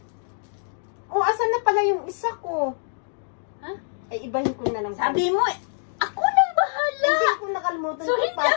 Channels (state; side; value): silent; right; digital silence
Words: Asan na pala yung isa ko? Ha? Ay, ibahin ko na lang. Sabi mo, ako nang bahala! Hindi ko nakalimutan. So, hindi